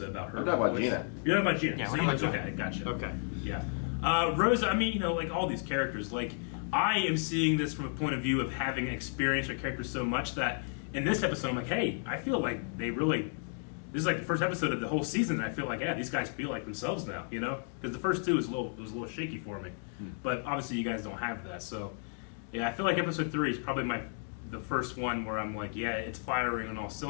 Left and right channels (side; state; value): right; silent; 56 dB below the other